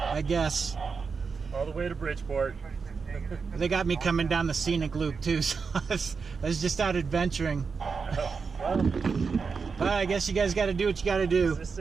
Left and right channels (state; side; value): quieter; left; 5.2 dB